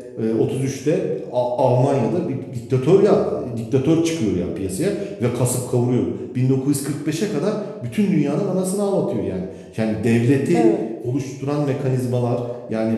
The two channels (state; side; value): identical; both; correlation 1.00